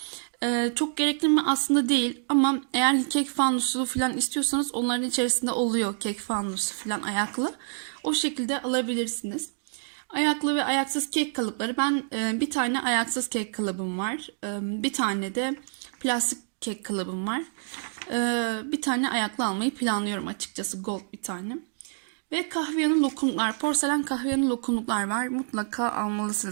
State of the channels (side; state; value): left; silent; digital silence